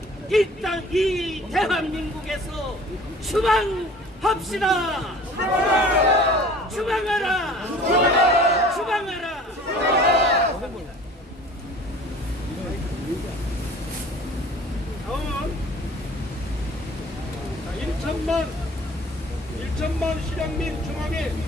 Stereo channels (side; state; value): both; normal; correlation 0.47